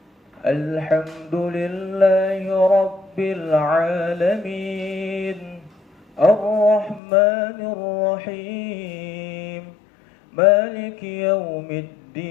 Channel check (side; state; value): right; drops out; at 7.0 s